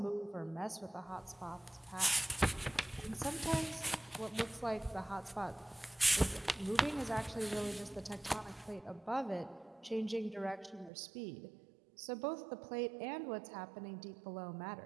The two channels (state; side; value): drops out; left; at 10.9 s